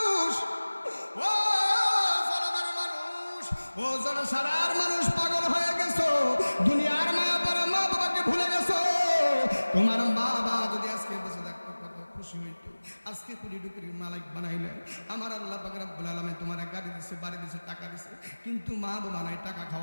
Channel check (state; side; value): inverted; both; correlation -1.00